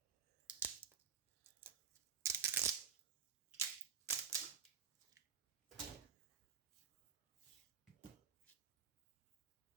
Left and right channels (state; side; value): quieter; left; 7.5 dB